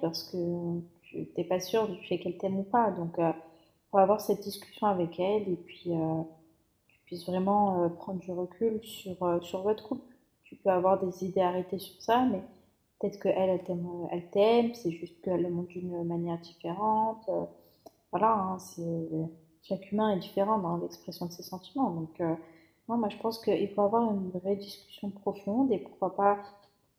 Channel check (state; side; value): identical; both; correlation 1.00